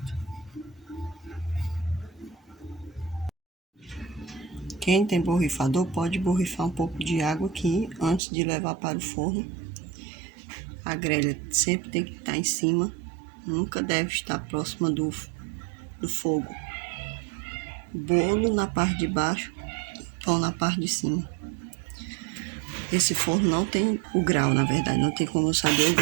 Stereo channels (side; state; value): left; drops out; at 8.2 s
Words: Quem tem borrifador pode borrifar um pouco de água aqui antes de levar para o forno. A grelha sempre tem que estar em cima, nunca deve estar próxima do fogo. Bolo na parte de baixo, pão na parte de cima. Esse forno não tem o grau, na verdade, não tem como eu saber o